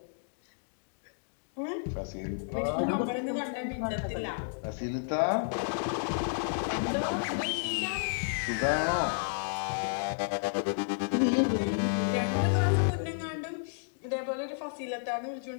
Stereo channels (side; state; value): right; silent; digital silence